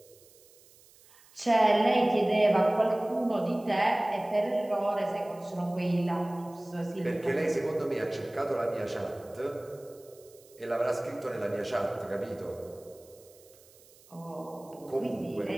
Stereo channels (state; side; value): noise; right; hiss, 26 dB below the sound